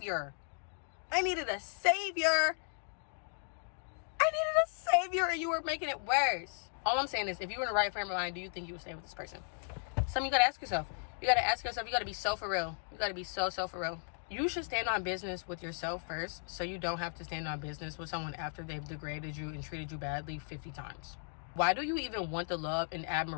And you were making it worse. All I'm saying is, if you were in the right frame of mind, do you think you would stay with this person? Something you gotta ask yourself. You gotta be so for real. You gotta be so for real. You should stand on business with yourself first, so you don't have to stand on business with someone after they've degraded you and treated you badly 50 times. Why do you even want the love and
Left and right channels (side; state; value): right; silent; 54 dB below the other